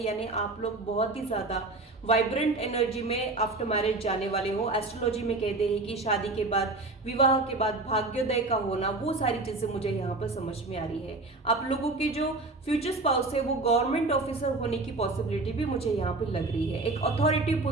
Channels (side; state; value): left; quieter; 3.2 dB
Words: आप लोग बहुत ही ज्यादा वाइब्रेंट एनर्जी में आफ्टर मैरिज जाने वाले हो। एस्ट्रोलॉजी में कहते हैं कि शादी के बाद, विवाह के बाद भाग्योदय का होना, वो सारी चीजें मुझे यहाँ पर समझ में आ रही है। आप लोगों के जो फ्यूचर स्पाउस है वो गवर्नमेंट ऑफिसर होने की पॉसिबिलिटी भी मुझे यहाँ पे लग रही है। एक अथॉरिटी